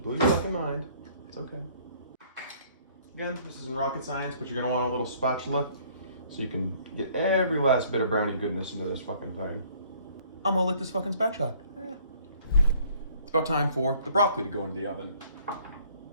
blew your fucking mind. It's okay. Again, this isn't rocket science, but you're gonna want a little spatula so you can get every last bit of brownie goodness into this fucking thing. I'm gonna lick this fucking spatula. It's about time for the broccoli to go into the oven.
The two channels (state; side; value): inverted; both; correlation -0.58